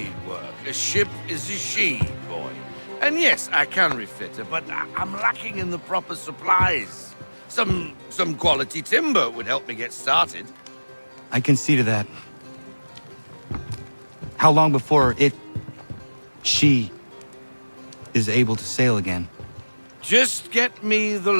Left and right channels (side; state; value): both; inverted; correlation -1.00